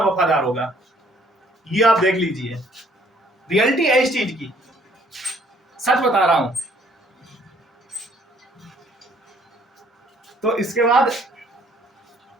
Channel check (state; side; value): normal; both; correlation 0.61